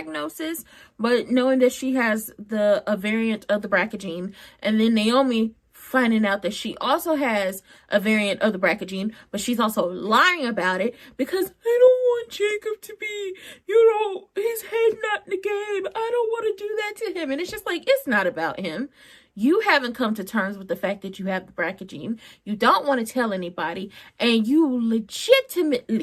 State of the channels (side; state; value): both; identical; correlation 1.00